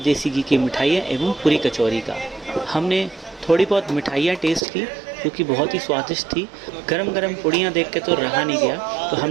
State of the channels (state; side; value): drops out; left; at 4.7 s